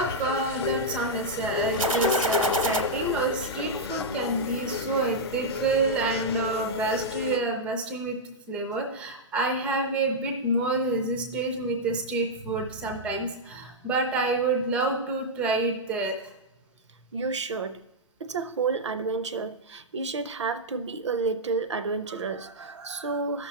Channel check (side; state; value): both; normal; correlation -0.06